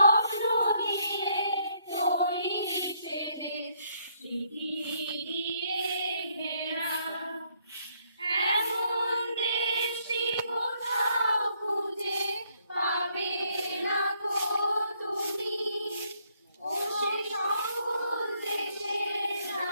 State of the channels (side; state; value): both; inverted; correlation -0.70